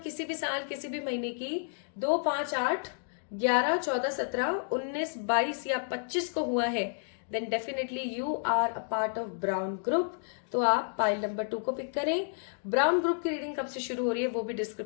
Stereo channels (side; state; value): right; silent; digital silence